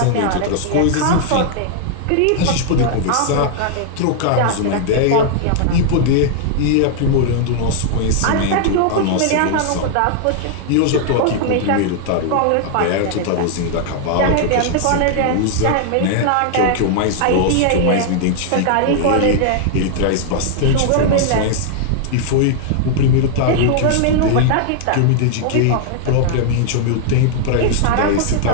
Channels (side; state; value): both; different; correlation 0.00